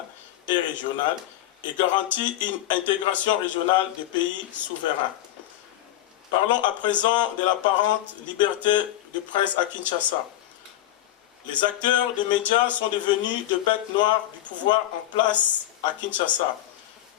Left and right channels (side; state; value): right; quieter; 13.5 dB